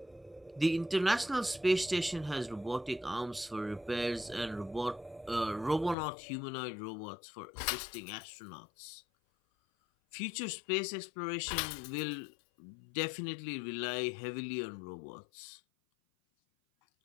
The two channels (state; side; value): drops out; right; at 6.0 s